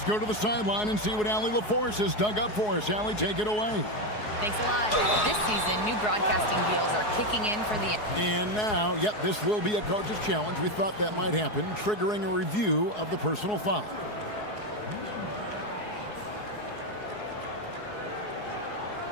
go to the sideline and see what Allie LaForce has dug up for us. Allie, take it away. Thanks a lot. This season, new broadcasting deals are kicking in for the... And now, this will be a coach's challenge. We thought that might happen, triggering a review of the personal foul.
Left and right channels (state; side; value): late; right; 4.7 ms